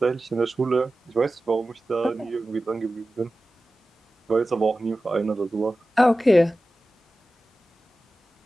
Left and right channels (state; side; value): normal; both; correlation 0.95